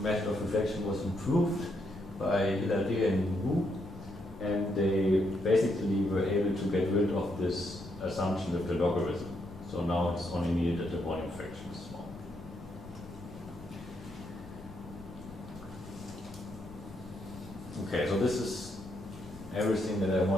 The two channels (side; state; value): left; noise; rumble, 17 dB below the sound